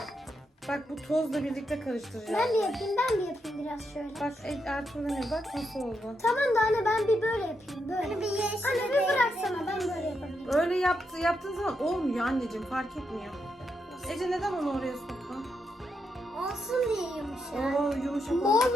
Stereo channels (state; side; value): normal; both; correlation 0.82